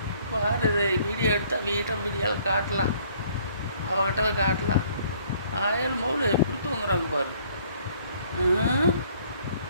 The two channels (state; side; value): inverted; both; correlation -0.60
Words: பாரு, இதை வீடியோ எடுத்தால் வீடியோவில் காட்டலாம், அவகிட்ட காட்டலாம். 1000 மௌல எப்படி தூங்குறாங்க பாரு.